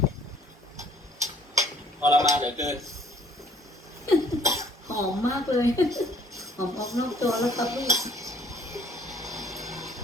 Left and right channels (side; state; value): both; normal; correlation 0.59